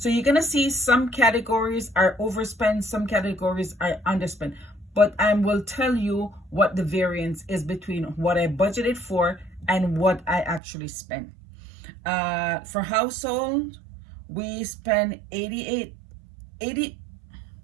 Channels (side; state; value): left; drops out; at 10.6 s